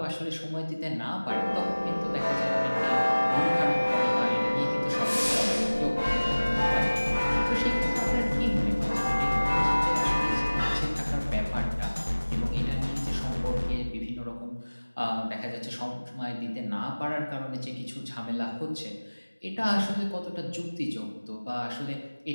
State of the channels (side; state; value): both; inverted; correlation -1.00